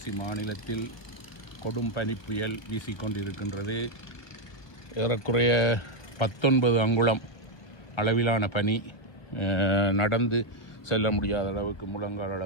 மாநிலத்தில் கொடும் பனி புயல் வீசிக்கொண்டிருக்கின்றது. ஏறக்குறைய 19 அங்குலம் அளவிலான பனி. நடந்து செல்ல முடியாத அளவுக்கு, முழங்கால்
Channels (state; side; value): late; right; 1.0 ms